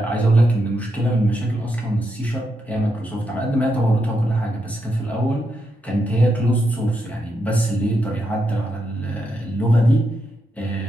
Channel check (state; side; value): normal; both; correlation 0.83